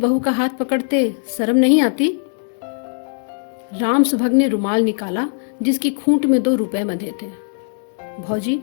का हाथ पकड़ते शर्म नहीं आती? राम सुभग ने रुमाल निकाला जिसकी खूंट में 2 रुपए बंधे थे। भौजी,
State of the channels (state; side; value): silent; right; 66 dB below the other